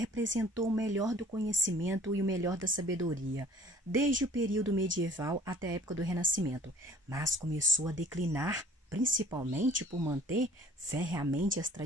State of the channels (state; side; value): normal; both; correlation 0.53